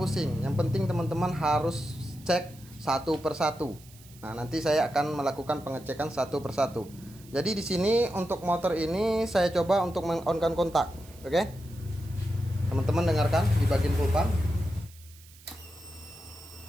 Yang penting teman-teman harus cek satu persatu. Nah, nanti saya akan melakukan pengecekan satu persatu. Jadi di sini untuk motor ini saya coba untuk meng-on-kan kontak. Oke. Teman-teman dengarkan di bagian full pump.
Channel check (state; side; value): noise; right; hiss, 23 dB below the sound